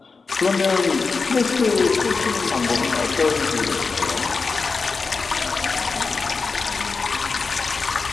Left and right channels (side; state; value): right; quieter; 4.5 dB